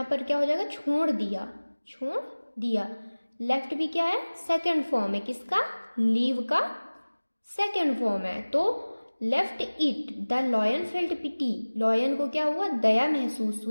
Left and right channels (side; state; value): both; inverted; correlation -1.00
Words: पर क्या हो जाएगा? छोड़ दिया, छोड़ दिया। लेफ्ट भी क्या है? सेकंड फॉर्म है किसका? लीव का सेकंड फॉर्म है। तो left it, the lion felt pity, lion को क्या हुआ? दया महसूस